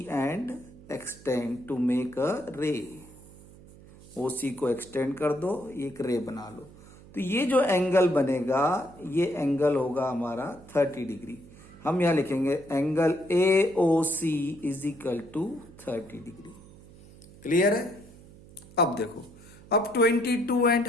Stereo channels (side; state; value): right; noise; hum, 21 dB below the sound